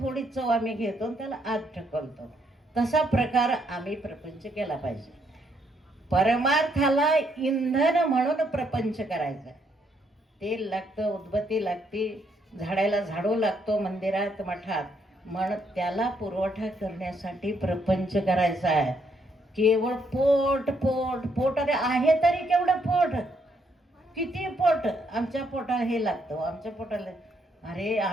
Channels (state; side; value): normal; both; correlation 0.73